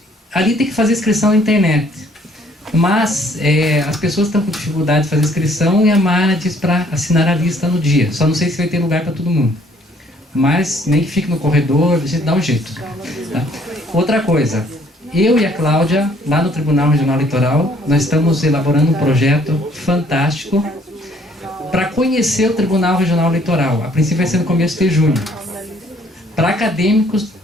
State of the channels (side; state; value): both; normal; correlation 0.62